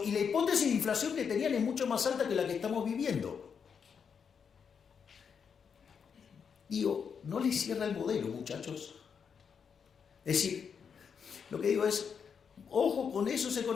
y la hipótesis de inflación que tenían es mucho más alta que la que estamos viviendo. Digo, no les cierra el modelo, muchachos. Es decir, lo que digo es, ojo con esos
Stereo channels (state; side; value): quieter; right; 6.7 dB